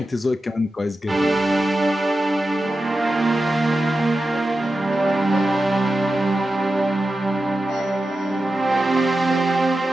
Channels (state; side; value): normal; both; correlation 0.92